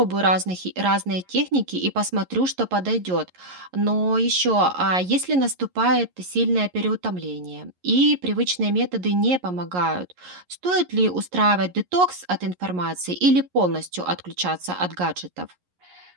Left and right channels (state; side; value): late; left; 11 ms